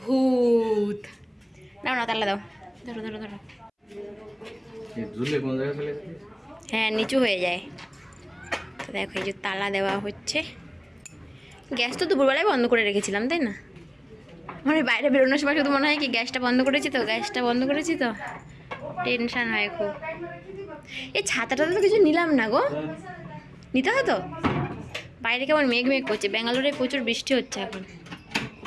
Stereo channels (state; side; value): identical; both; correlation 1.00